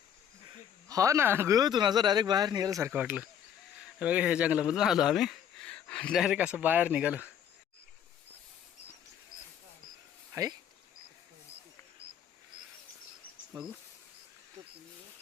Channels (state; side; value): quieter; right; 9.0 dB